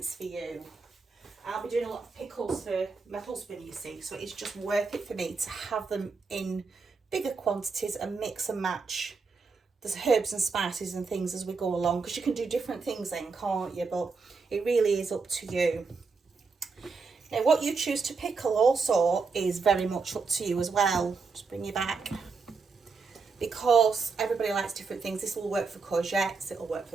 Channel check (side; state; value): left; quieter; 4.7 dB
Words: for you. I'll be doing a lot of pickles for my husband, you see, so it's just worth it for me to have them in bigger quantities and mix and match the herbs and spices and things as we go along, because you can do different things then, can't you? But it really is up to you. Now, what you choose to pickle also is very much up to you as well. Just bring you back. Because everybody likes different things. This will work for courgettes, it'll work